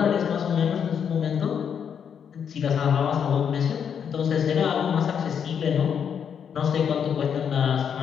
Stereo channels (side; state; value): right; quieter; 7.7 dB